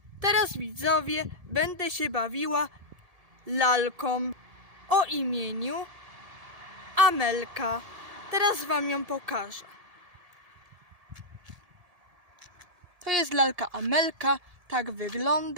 Teraz widzowie, będę się bawiła lalką o imieniu Amelka. Teraz wam ją pokażę. To jest lalka Amelka, tak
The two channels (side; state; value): left; late; 1.7 ms